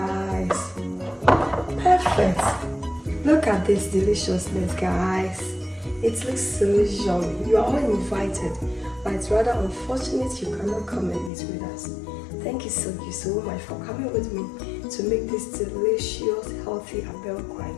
Perfect. Look at this deliciousness, guys. It looks so yummy. You are all invited, but it's rather unfortunate you cannot come and eat with us. Thank you so much for coming with me to make this delicious, healthy Abenkwan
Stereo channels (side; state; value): right; drops out; at 11.3 s